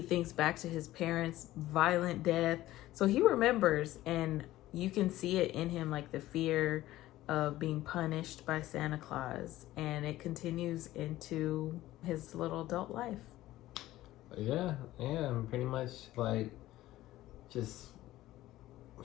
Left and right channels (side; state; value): right; quieter; 15.7 dB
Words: back to his parents' violent death. So he remembers, and you can see it in him, like the fear of being punished by Santa Claus, and it continues into his little adult life. Yeah, pretty much like just